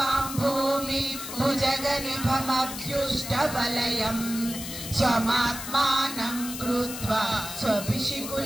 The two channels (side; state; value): left; noise; hiss, 8 dB below the sound